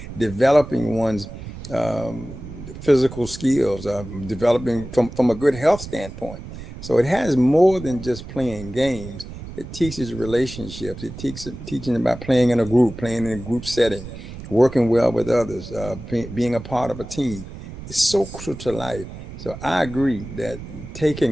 developing one's physical skills, developing from a good health standpoint. So it has more than just playing games. It teaches relationships. It teaches teaching about playing in a group, playing in a group setting, working well with others, being a part of a team. It's so crucial to life. So I agree that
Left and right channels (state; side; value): noise; right; rumble, 12 dB below the sound